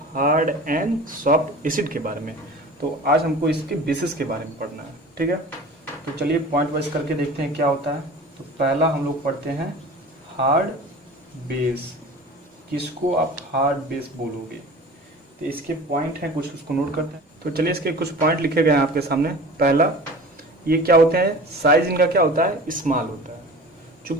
हार्ड एंड सॉफ्ट एसिड के बारे में, तो आज हमको इसके बेसिस के बारे में पढ़ना है। ठीक है, तो चलिए पॉइंट वाइज करके देखते हैं क्या होता है। तो पहला हम लोग पढ़ते हैं हार्ड बेस। किसको आप हार्ड बेस बोलोगे? तो इसके पॉइंट हैं कुछ, उसको नोट करते हैं। तो चलिए इसके कुछ पॉइंट लिखे गए हैं आपके सामने। पहला, ये क्या होते हैं? साइज इनका क्या होता है? स्मॉल होता है।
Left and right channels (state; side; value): normal; both; correlation 0.38